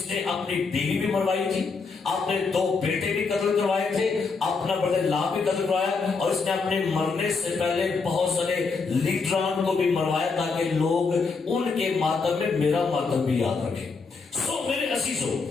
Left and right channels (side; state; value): right; quieter; 4.6 dB